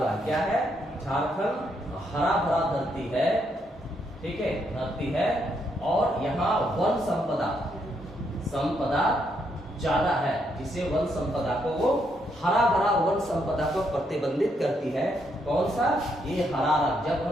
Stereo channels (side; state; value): both; normal; correlation 0.76